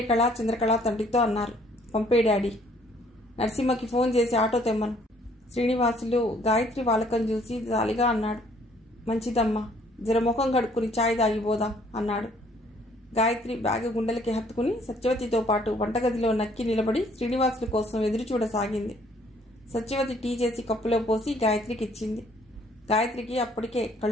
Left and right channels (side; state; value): both; normal; correlation 0.62